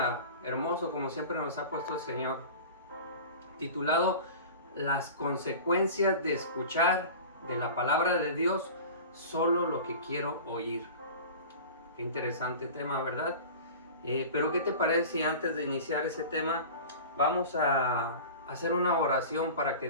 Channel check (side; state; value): both; inverted; correlation -0.36